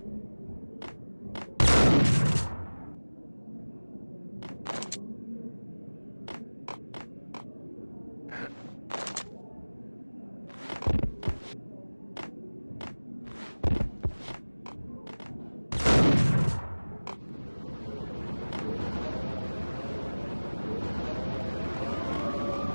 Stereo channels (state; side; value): inverted; both; correlation -1.00